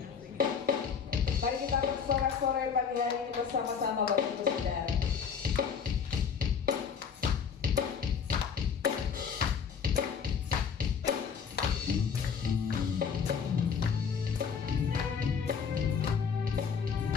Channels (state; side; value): quieter; right; 6.6 dB